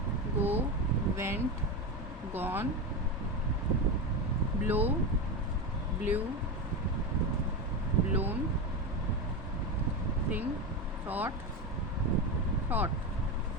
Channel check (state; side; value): normal; both; correlation 0.17